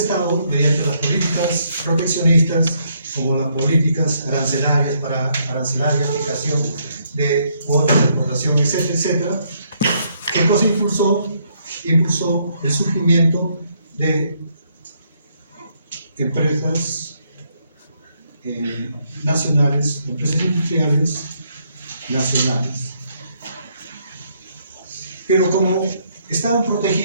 mediante las políticas proteccionistas, como las políticas arancelarias para arancelar y aplicación de cuotas de exportación, etcétera, etcétera, ¿qué cosa impulsó? Impulsó el surgimiento de empresas nacionales, empresas industriales nacionales. Pero como estaban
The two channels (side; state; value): both; inverted; correlation -0.72